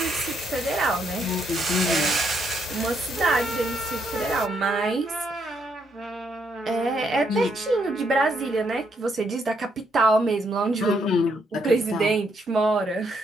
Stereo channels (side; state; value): both; normal; correlation 0.75